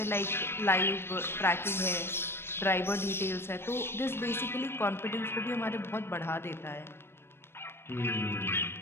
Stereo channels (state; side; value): late; right; 0.12 ms